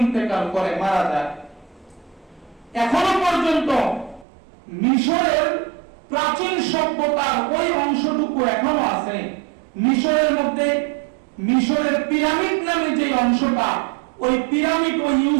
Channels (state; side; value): drops out; left; at 4.2 s